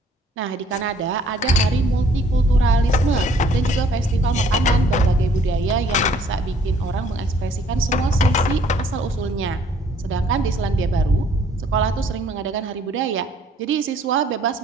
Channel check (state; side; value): normal; both; correlation 0.61